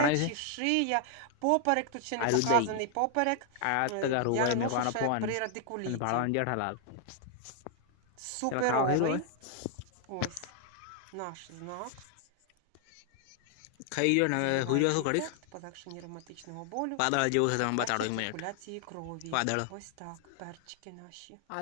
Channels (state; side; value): different; both; correlation 0.00